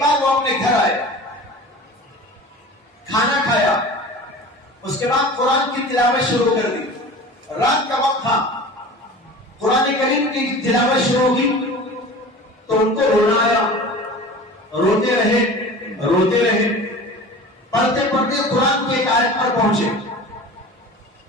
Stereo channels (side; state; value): both; normal; correlation 0.38